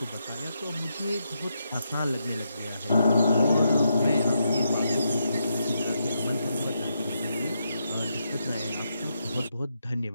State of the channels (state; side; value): inverted; both; correlation -0.82